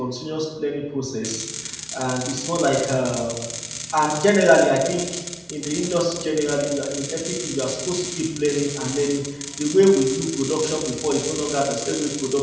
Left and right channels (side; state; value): both; identical; correlation 1.00